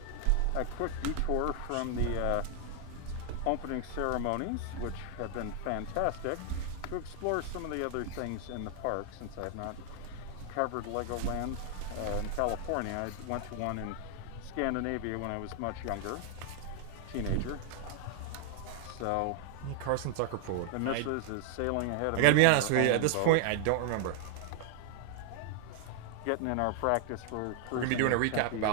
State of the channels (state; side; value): different; both; correlation 0.00